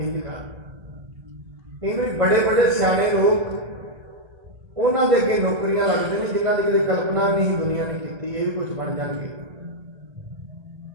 ਕਰ। ਕਈ ਵਾਰੀ ਬੜੇ ਬੜੇ ਸਿਆਣੇ ਲੋਕ, ਉਹਨਾਂ ਦੇ ਅੱਗੇ ਨੌਕਰੀਆਂ ਲੱਗਦੇ ਨੇ ਜਿਨ੍ਹਾਂ ਦੀ ਕਦੇ ਕਲਪਨਾ ਵੀ ਨਹੀਂ ਦੁਨੀਆ ਨੇ ਕੀਤੀ, ਇਹ ਵੀ ਕੁਝ ਬਣ ਜਾਣਗੇ।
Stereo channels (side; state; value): left; late; 1.3 ms